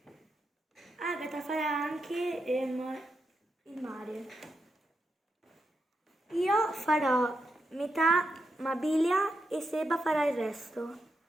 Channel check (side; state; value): both; normal; correlation 0.85